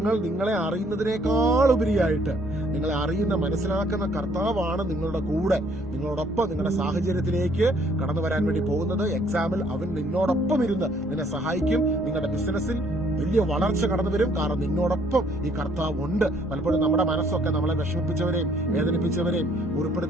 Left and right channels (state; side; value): normal; both; correlation 0.64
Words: നിങ്ങളെ അറിയുന്നതിനേക്കാൾ ഉപരിയായിട്ട് നിങ്ങളെ അറിയുന്ന, മനസ്സിലാക്കുന്ന കർത്താവാണ് നിങ്ങളുടെ കൂടെ, നിങ്ങളോടൊപ്പം നിങ്ങളുടെ സാഹചര്യത്തിലേക്ക് കടന്നു വരാൻ വേണ്ടി പോകുന്നത്. എക്സാമിൽ അവൻ നിന്നോടൊപ്പം ഇരുന്ന് നിന്നെ സഹായിക്കും. നിങ്ങളുടെ ബിസിനസ്സിൽ വലിയ വളർച്ച കടന്നു വരും. കാരണം നിന്നോടൊപ്പം ഈ കർത്താവ് ഉണ്ട്. പലപ്പോഴും നമ്മുടെ മനസ്സൊക്കെ നമ്മളെ വിഷമിപ്പിച്ചവരെയും വേദനിപ്പിച്ചവരെയും